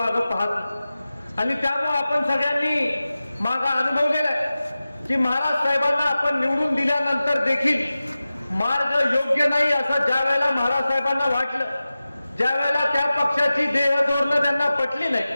पाहत नाही. आणि त्यामुळे आपण सगळ्यांनी मागा अनुभवलेला आहे की महाराज साहेबांना आपण निवडून दिल्यानंतर देखील मार्ग योग्य नाही असं ज्या वेळेला महाराज साहेबांना वाटलं, ज्या वेळेला त्या पक्षाची देहधोरणं त्यांना पटली नाही,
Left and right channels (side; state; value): both; inverted; correlation -0.95